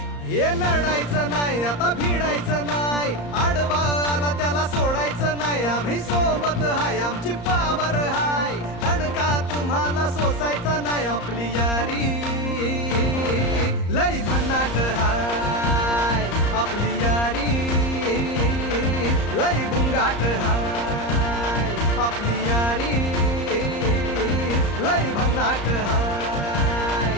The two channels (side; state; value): right; late; 34 ms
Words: हे लढायचं नाही आता भिडायचं नाही, आडवा आला त्याला सोडायचं नाही. आम्ही सोबत हाय आमची पावर हाय, दणका तुम्हाला सोसायचा नाही. आपली यारी लय भन्नाट हाय, आपली यारी लय गुंगाट हाय. आपली यारी लय भन्नाट हाय,